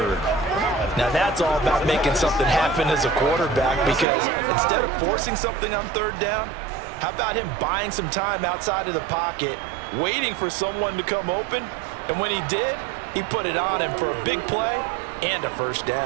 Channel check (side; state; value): left; drops out; at 4.0 s